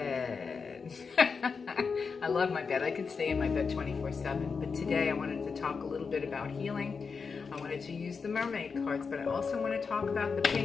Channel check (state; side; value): quieter; right; 5.3 dB